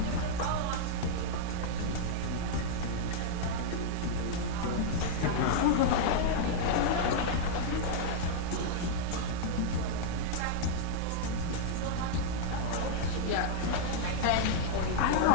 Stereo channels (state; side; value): different; both; correlation -0.01